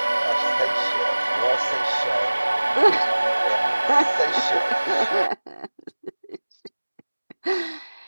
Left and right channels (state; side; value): inverted; both; correlation -1.00